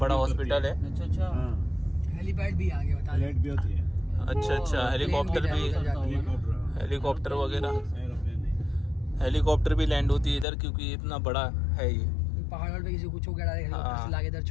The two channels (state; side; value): drops out; right; at 10.5 s